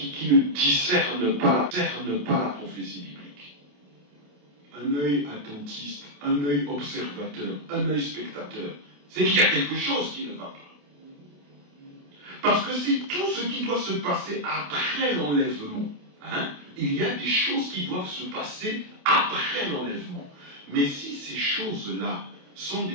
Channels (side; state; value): left; late; 28 ms